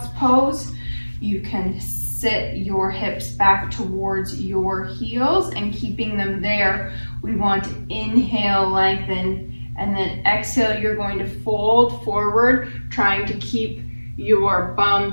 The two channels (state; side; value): inverted; both; correlation -1.00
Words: pose. You can sit your hips back towards your heels and keeping them there. We want to inhale, lengthen, and then exhale, you're going to fold forward, trying to keep your bum